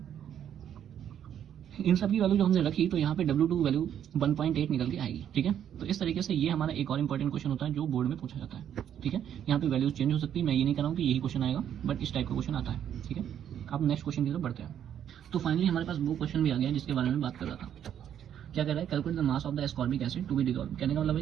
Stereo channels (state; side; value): quieter; left; 9.7 dB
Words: इन सब की वैल्यू जो हमने रखी तो यहाँ पे W2 वैल्यू 1.8 निकल के आएगी। ठीक है, तो इस तरीके से ये हमारा एक और इंपॉर्टेंट क्वेश्चन होता है जो बोर्ड में पूछा जाता है। ठीक है, यहाँ पे वैल्यूज चेंज हो सकती है, मैं ये नहीं कर रहा हूँ कि यही क्वेश्चन आएगा, बट इस टाइप का क्वेश्चन आता है। ठीक है, आप नेक्स्ट क्वेश्चन की तरफ बढ़ते हैं। तो फाइनली हमारे पास वो क्वेश्चन भी आ गया जिसके बारे में बात कर रहा था। क्या कह रहा है, calculate the mass of the ascorbic acid to be dissolve. कहने का मतलब है